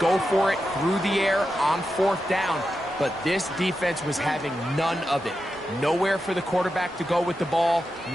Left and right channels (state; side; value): normal; both; correlation 0.89